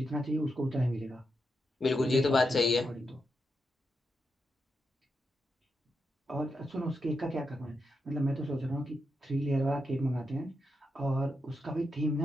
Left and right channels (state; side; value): normal; both; correlation 0.85